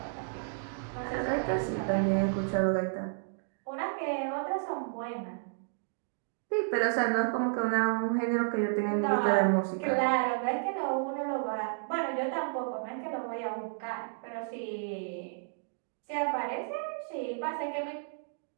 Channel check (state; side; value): silent; left; digital silence